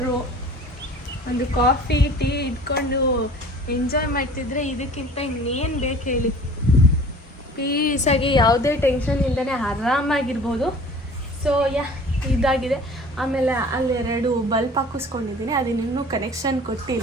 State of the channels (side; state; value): both; normal; correlation 0.45